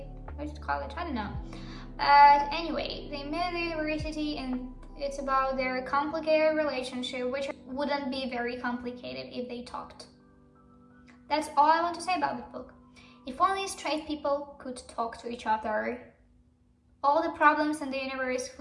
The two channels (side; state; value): both; identical; correlation 1.00